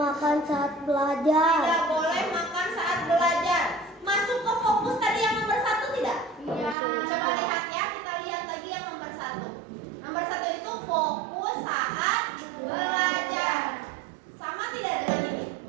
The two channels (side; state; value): left; drops out; at 6.8 s